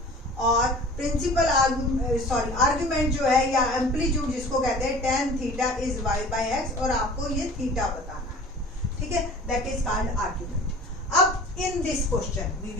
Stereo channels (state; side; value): normal; both; correlation 0.43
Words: और प्रिंसिपल आर्ग्यूमेंट जो है या एम्पलीट्यूड जिसको कहते हैं tan थीटा इज y/x और आपको ये थीटा बताना है, ठीक है, दैट इज कॉल्ड आर्ग्यूमेंट। अब in this question we